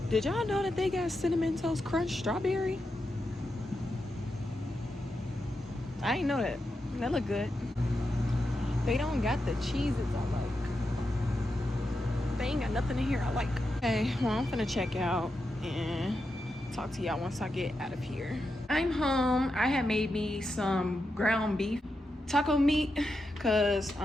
Did y'all know that they got Cinnamon Toast Crunch strawberry? I ain't know that. That look good. They don't got the cheeses I like. They ain't got nothing in here I like. Okay, well I'm finna check out and talk to y'all once I get out of here. I'm home. I had made me some ground beef taco meat because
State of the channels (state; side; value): normal; both; correlation 0.87